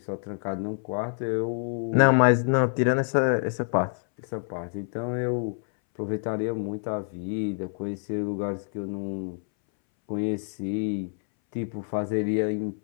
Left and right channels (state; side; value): silent; right; 60 dB below the other